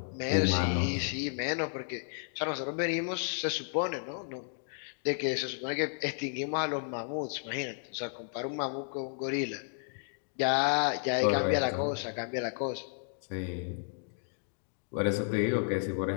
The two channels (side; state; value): right; silent; digital silence